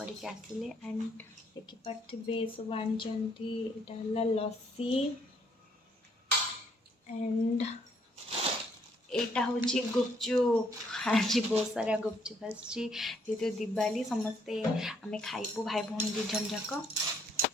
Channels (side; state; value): both; normal; correlation 0.68